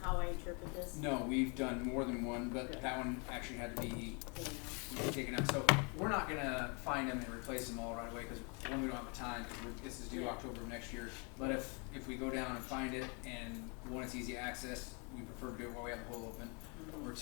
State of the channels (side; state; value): right; quieter; 33.9 dB